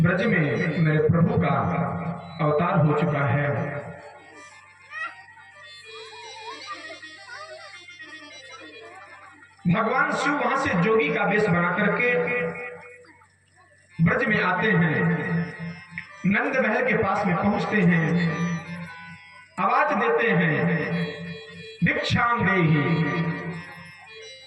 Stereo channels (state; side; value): identical; both; correlation 1.00